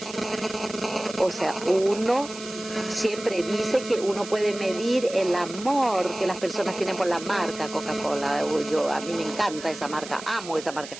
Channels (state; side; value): noise; right; hiss, 13 dB below the sound